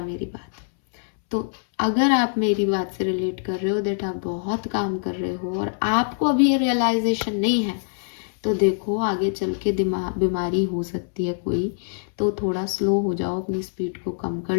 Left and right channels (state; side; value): silent; right; 63 dB below the other